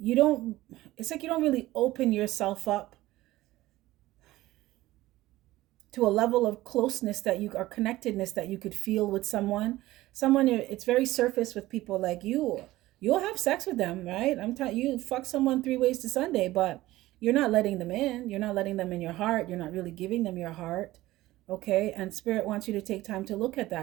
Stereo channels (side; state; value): left; quieter; 17.0 dB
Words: like you don't really open yourself up to a level of closeness that you, or connectedness that you could feel with someone. It's very surface with people like you. You'll have sex with them, right? I'm telling you, fuck someone 3 ways to Sunday, but you're not letting them in. You're not letting them in your heart. You're not really giving them your heart. Okay. And Spirit wants you to take time to look at